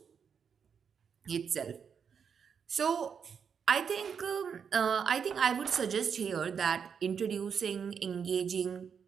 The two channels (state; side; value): quieter; left; 6.9 dB